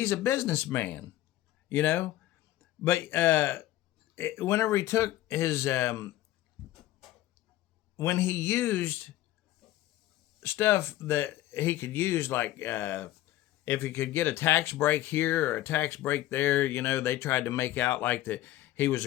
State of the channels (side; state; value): right; quieter; 14.6 dB